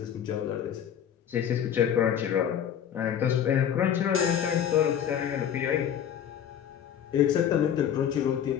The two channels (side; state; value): right; quieter; 9.3 dB